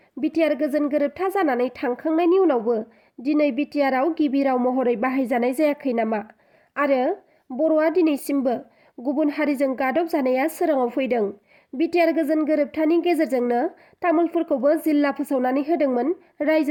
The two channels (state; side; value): identical; both; correlation 1.00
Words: बिटिआर गोजोन गोरोबथा जानानै थांखांनायनि उनावबो दिनै बिटिआरआव गिबि राव महरै बाहायजानाय जायाखै नामा? आरो बर'आ दिनैसिमबो गुबुन हारिजों गादब जानाया सोराङाव फैदों। बिटिआर गोजोन गोरोबथानि गेजेरजोंनो तामुलपुरखौबो जिल्ला फोसावनानै होदोंमोन